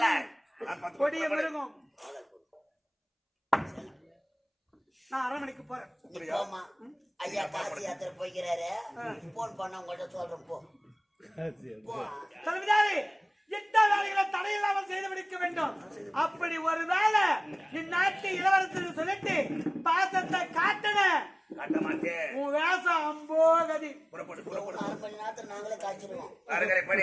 கொடிய மிருகம். நான் அரண்மனைக்கு போறேன். ஐயா காசி யாத்திரை போய்கிறாரு. போன் பண்ண உங்கள்கிட்ட சொல்றேன். போ தலைவிதாரி, எந்த வேலைகளை தடையில்லாமல் செய்து முடிக்க வேண்டும். அப்படி ஒரு வேலை இந்நாட்டு இளவரசர் சொல்லிட்டு பாசத்தை காட்டன உன் வேசம் அம்போகதி. நாங்களே காய்ச்சிருவோம்.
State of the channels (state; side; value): identical; both; correlation 1.00